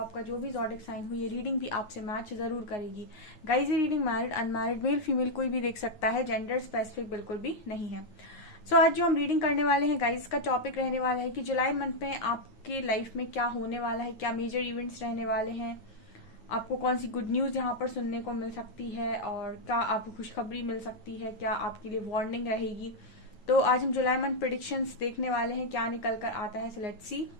जो भी जॉडिक साइन हो ये रीडिंग भी आपसे मैच जरूर करेगी। गाइस, ये reading married unmarried male female कोई भी देख सकता है, जेंडर स्पेसिफिक बिल्कुल भी नहीं है। सो आज जो हम रीडिंग करने वाले हैं गाइस, का टॉपिक रहने वाला है कि जुलाई मंथ में आपके लाइफ में क्या होने वाला है, क्या मेजर इवेंट्स रहने वाले हैं, आपको कौन सी गुड न्यूज यहाँ पर सुनने को मिल सकती है, और क्या आपको खुशखबरी मिल सकती है, क्या आपके लिए वार्निंग रहेगी। तो आज हम जुलाई मंथ प्रिडिक्शंस देखने वाले हैं, क्या निकल कर आता है। So let's see.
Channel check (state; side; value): late; right; 9.6 ms